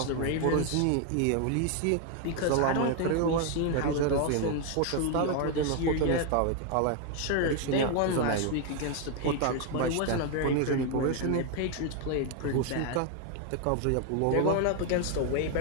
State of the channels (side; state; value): both; different; correlation 0.01